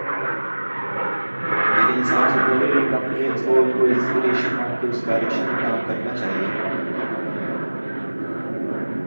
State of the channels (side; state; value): both; inverted; correlation -1.00